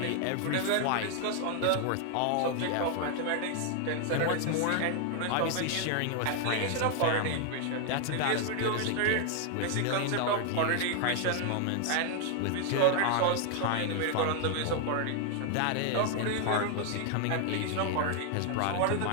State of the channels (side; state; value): both; different; correlation 0.00